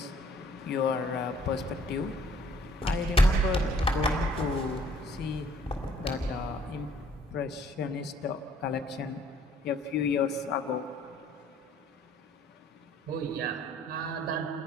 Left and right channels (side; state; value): both; normal; correlation 0.60